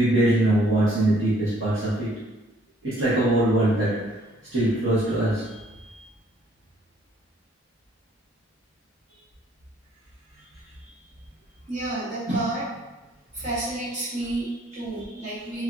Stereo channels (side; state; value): both; normal; correlation 0.63